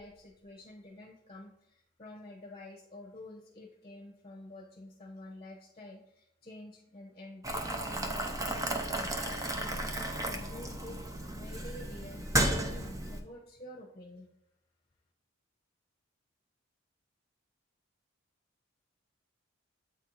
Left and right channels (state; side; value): normal; both; correlation 0.35